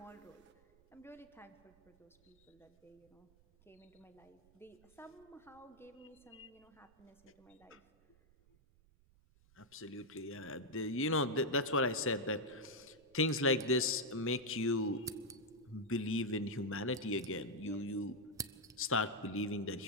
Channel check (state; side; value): noise; right; rumble, 30 dB below the sound